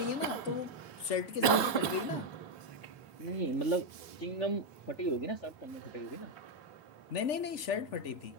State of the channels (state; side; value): late; right; 3.4 ms